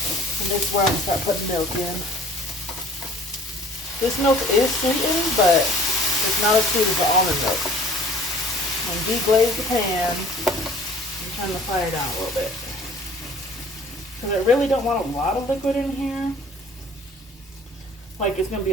And this is where I'm gonna start putting milk in. This milk is sweetened, but it's not as sweet as the almond milk. When deglaze the pan, I'm turning the fire down a little bit. Because I really don't want a lot of liquid in here. Like it's going to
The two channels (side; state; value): both; normal; correlation 0.52